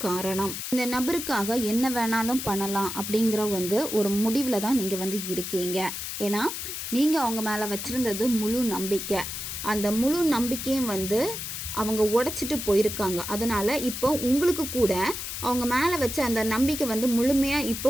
காரணம். இந்த நபருக்கு என்ன வேணாலும் பண்ணலாம் அப்படிங்கிற வந்து ஒரு முடிவில் தான் நீங்கள் வந்து இருக்கீங்க. ஏன்னா நீங்கள் அவங்க மேலே வச்சுருந்தது முழு நம்பிக்கை. அந்த முழு நம்பிக்கையும் வந்து அவங்க உடைச்சிட்டு போயிருக்காங்க. அதனால் இப்போ உங்களுக்கு கூட அவங்க மேலே வச்ச அந்த நம்பிக்கை வந்து முழுமையாக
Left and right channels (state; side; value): noise; left; hiss, 6 dB below the sound